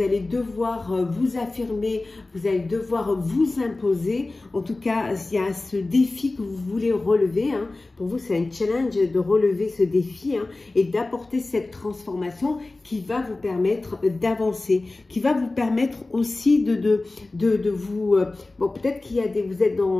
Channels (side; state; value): right; quieter; 3.1 dB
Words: allez devoir vous affirmer, vous allez devoir vous imposer. En tout cas, il y a ce défi que vous voulez relever, hein. Pour vous, c'est un challenge de relever ce défi, hein, et d'apporter cette transformation qui va vous permettre d'avancer, qui va vous permettre aussi de vous... bon, peut-être qu'il y a vous êtes